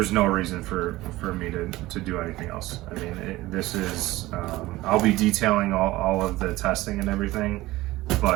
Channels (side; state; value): left; quieter; 18.1 dB